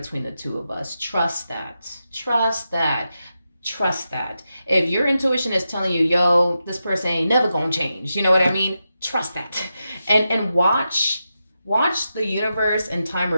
the two of us. Trust that. Trust that. Trust that. If your intuition is telling you, yo, this person ain't never going to change, you know what I mean? Trust that. And watch the universe and time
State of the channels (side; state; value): both; inverted; correlation -0.89